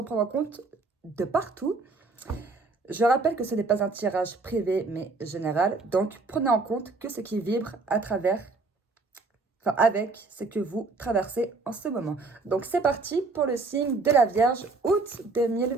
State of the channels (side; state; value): left; quieter; 3.8 dB